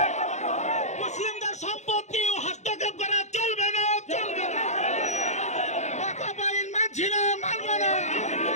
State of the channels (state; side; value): late; right; 0.33 ms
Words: মুসলিমদের সম্পত্তি হস্তক্ষেপ করা চলবে না, চলবে না, মানছি না, মানব না।